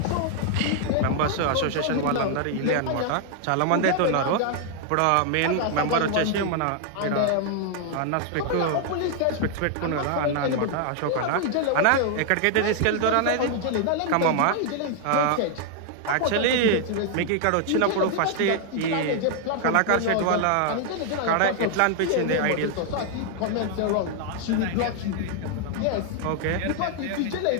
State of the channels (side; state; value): both; different; correlation 0.00